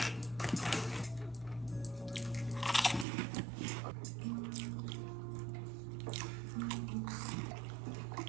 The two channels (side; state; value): left; drops out; at 3.1 s